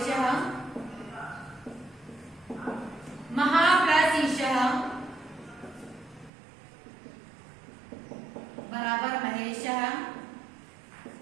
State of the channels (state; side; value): drops out; left; at 6.3 s